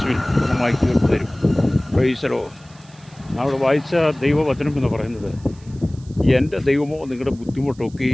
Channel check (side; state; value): right; noise; hiss, 27 dB below the sound